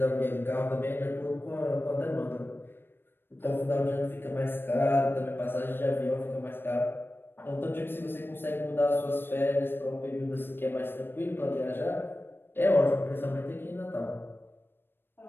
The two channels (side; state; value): right; late; 0.10 ms